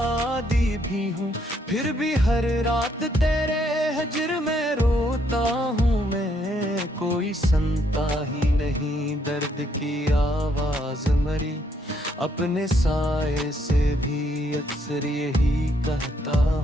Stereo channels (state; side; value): normal; both; correlation 0.72